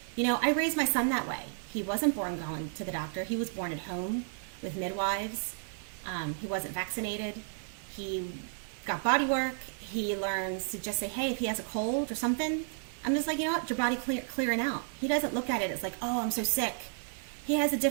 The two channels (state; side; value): silent; left; 56 dB below the other